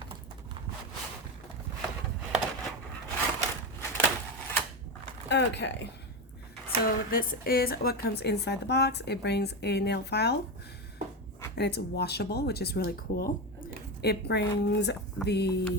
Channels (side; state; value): both; normal; correlation 0.16